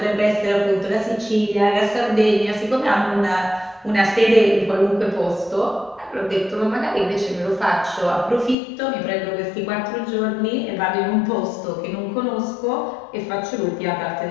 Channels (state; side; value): drops out; right; at 8.6 s